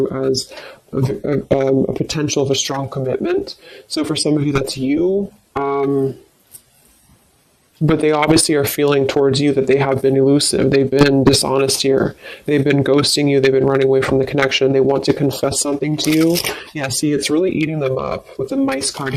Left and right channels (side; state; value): both; identical; correlation 1.00